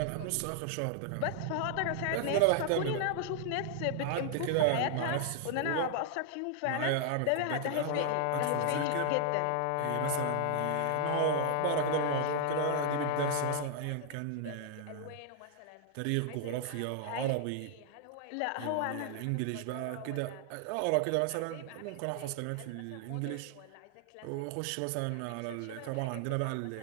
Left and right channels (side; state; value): both; different; correlation 0.00